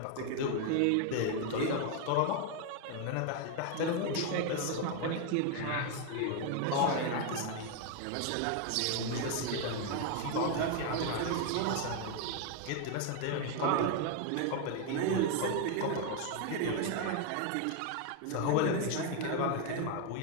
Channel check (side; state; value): both; different; correlation 0.01